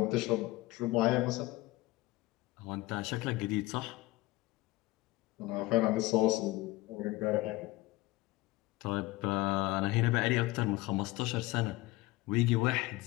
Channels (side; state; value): right; quieter; 19.6 dB